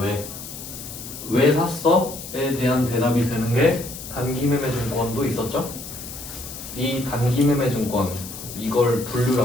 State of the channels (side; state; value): left; noise; hiss, 11 dB below the sound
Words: 왜 샀어?에 대한 대답이 되는 게 단기매매증권도 있었죠? 이 단기매매증권, 이걸